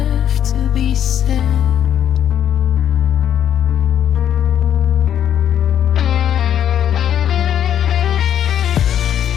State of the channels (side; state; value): right; quieter; 9.9 dB